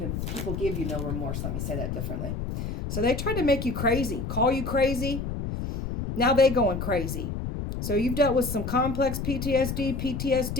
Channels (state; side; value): noise; left; rumble, 4 dB below the sound